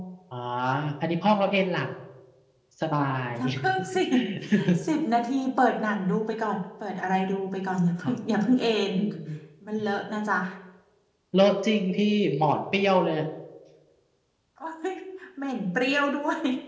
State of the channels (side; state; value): both; identical; correlation 1.00